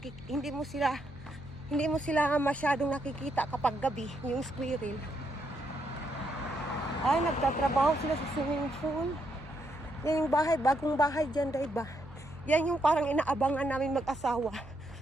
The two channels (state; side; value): noise; right; hum, 21 dB below the sound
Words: mo sila masyadong nakikita kapag gabi, yung squirrel. Ay, nagtatrabaho sila sa swimming pool. Yan yung bahay, bagong bahay dyan, day, ba? Yan yung parang inaabangan namin mag-asawa.